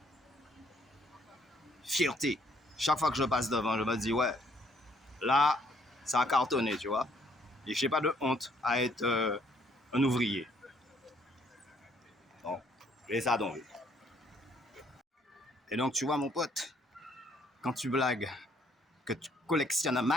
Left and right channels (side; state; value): both; normal; correlation 0.66